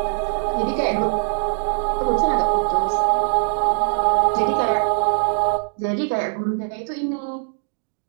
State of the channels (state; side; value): silent; left; digital silence